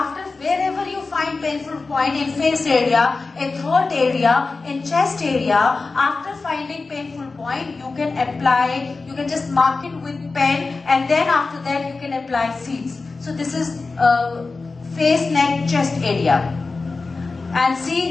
wherever you find painful point in face area, in throat area, in chest area, after finding painful point, you can apply, you can just mark it with pen, and then after that you can apply seeds. So this is face, neck, chest area. And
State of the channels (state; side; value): quieter; right; 3.9 dB